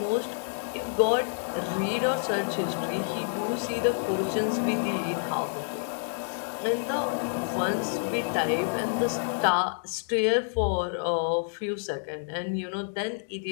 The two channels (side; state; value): right; silent; digital silence